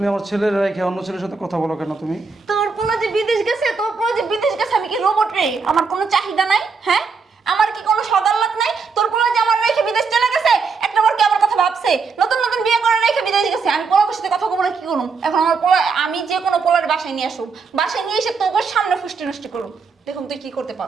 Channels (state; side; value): quieter; left; 4.9 dB